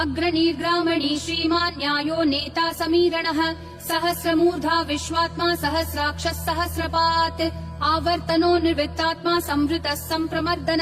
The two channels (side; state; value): both; identical; correlation 1.00